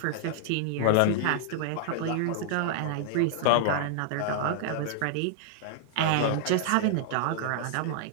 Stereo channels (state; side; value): different; both; correlation -0.01